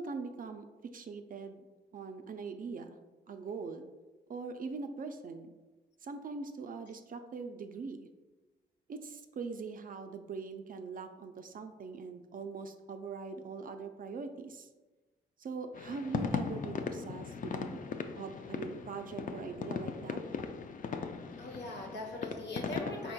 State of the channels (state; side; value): normal; both; correlation 0.48